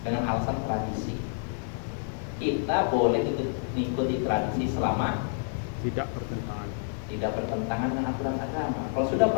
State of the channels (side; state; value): right; silent; digital silence